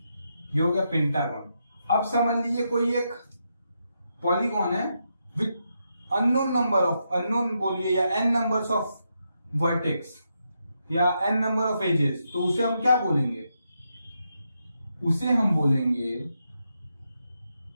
ये हो गया पेंटागन। अब समझ लीजिए कोई एक पॉलीगॉन है with unknown number of, unknown बोलिए या n नंबर्स ऑफ वर्टेक्स या n नंबर ऑफ एजेस, तो उसे हम क्या बोलेंगे, उसे हम बोलेंगे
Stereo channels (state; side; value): inverted; both; correlation -0.83